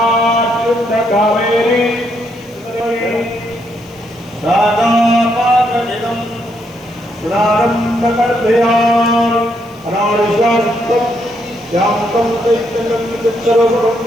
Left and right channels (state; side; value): noise; left; hiss, 28 dB below the sound